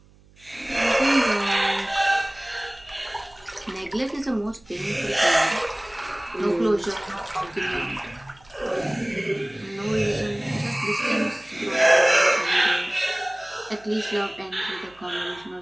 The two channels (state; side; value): noise; right; hum, 27 dB below the sound